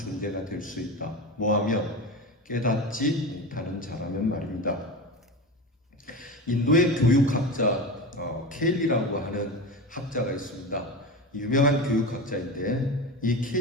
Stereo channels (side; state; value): both; normal; correlation 0.25